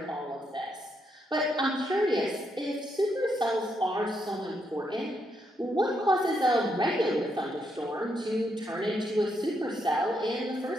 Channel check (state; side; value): normal; both; correlation 0.78